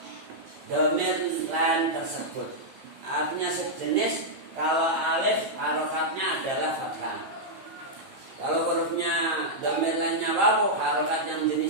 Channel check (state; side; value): late; left; 15 ms